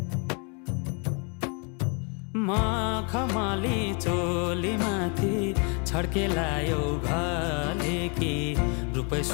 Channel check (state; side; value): quieter; right; 35.7 dB